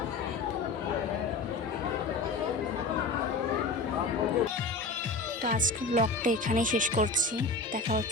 তো আজকে ব্লগটা এখানেই শেষ করছি। দেখা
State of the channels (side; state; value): right; quieter; 3.6 dB